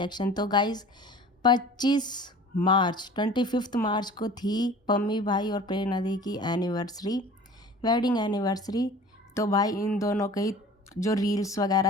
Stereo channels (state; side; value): normal; both; correlation 0.43